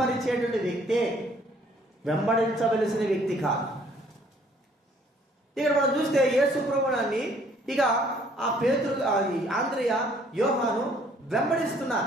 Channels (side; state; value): both; normal; correlation 0.61